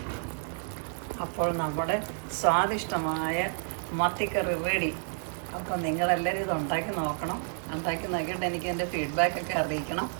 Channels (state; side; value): silent; left; 58 dB below the other